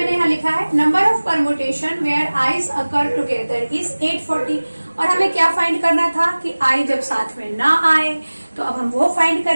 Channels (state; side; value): inverted; both; correlation -1.00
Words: यहाँ लिखा है, number of permutation where eyes occur together is 840। और हमें क्या फाइंड करना था कि आई जब साथ में ना आए, तो अब हम वो फाइंड